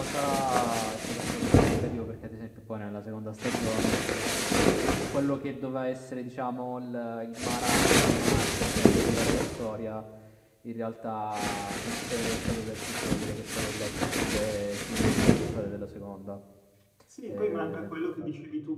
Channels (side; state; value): both; identical; correlation 1.00